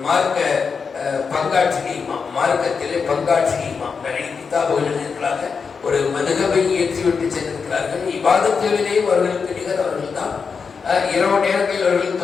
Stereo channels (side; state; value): right; quieter; 5.5 dB